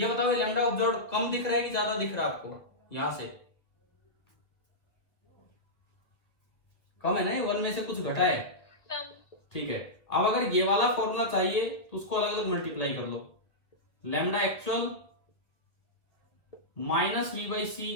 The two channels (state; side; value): late; right; 1.7 ms